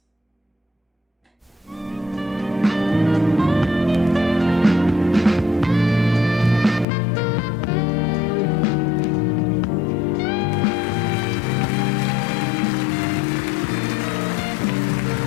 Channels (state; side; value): drops out; right; at 6.9 s